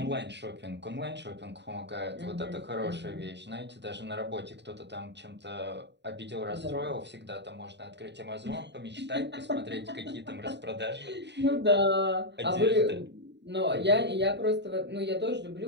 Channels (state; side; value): late; left; 0.50 ms